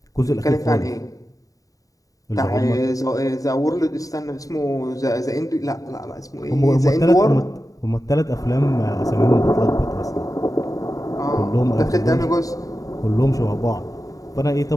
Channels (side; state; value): right; late; 0.17 ms